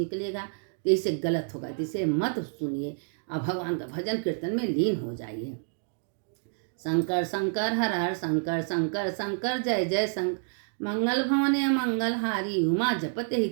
तो इससे गलत होगा। तो इसे मत सुनिए और भगवान का भजन कीर्तन में लीन हो जाइए। शंकर शंकर हर हर शंकर, शंकर शंकर जय जय शंकर। मंगल भवने मंगल हारी, उमा जपते ही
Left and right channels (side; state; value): left; silent; digital silence